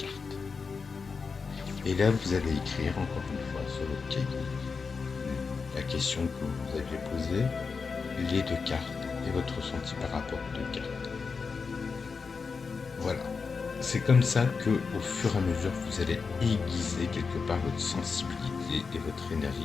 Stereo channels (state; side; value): quieter; right; 5.1 dB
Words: Et là vous allez écrire encore une fois sur votre cahier la question que vous aviez posée, les 2 cartes et votre ressenti par rapport aux 2 cartes. Voilà. C'est comme ça que, au fur et à mesure, vous allez aiguiser quelque part votre sensibilité et votre